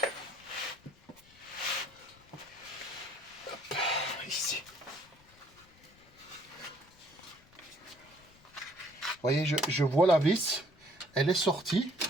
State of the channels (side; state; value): left; noise; rumble, 27 dB below the sound